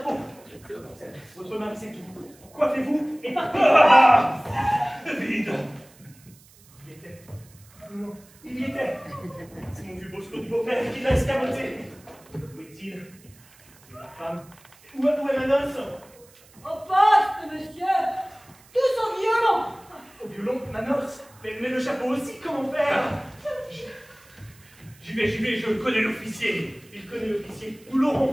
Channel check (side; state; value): right; noise; hiss, 26 dB below the sound